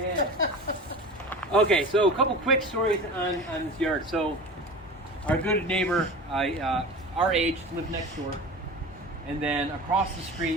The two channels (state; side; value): normal; both; correlation 0.34